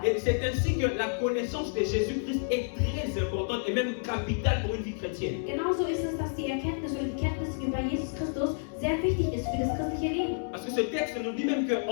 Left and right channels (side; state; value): right; silent; digital silence